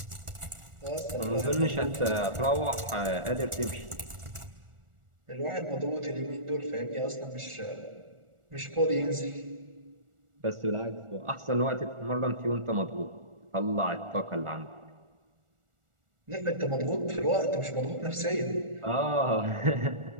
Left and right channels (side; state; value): left; late; 1.4 ms